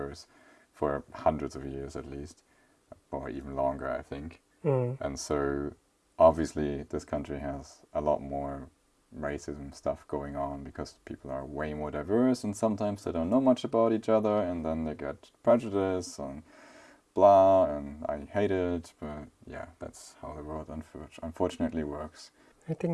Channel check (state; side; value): identical; both; correlation 1.00